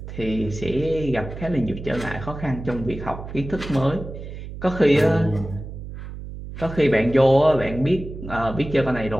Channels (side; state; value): right; noise; hum, 10 dB below the sound